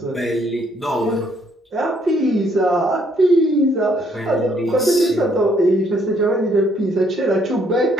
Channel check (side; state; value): both; normal; correlation 0.68